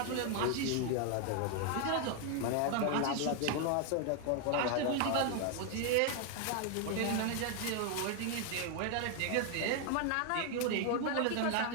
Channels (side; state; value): both; different; correlation 0.01